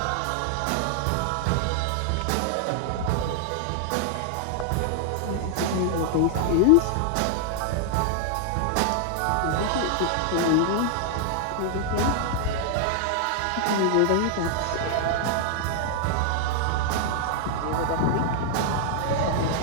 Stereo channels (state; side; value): different; both; correlation 0.00